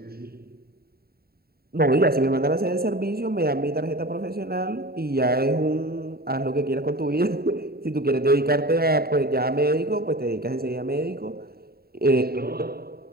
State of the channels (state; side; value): late; left; 0.45 ms